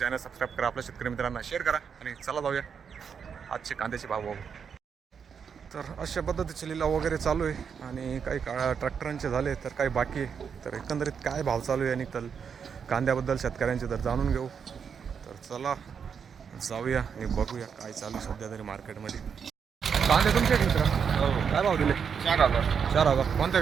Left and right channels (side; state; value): left; quieter; 6.8 dB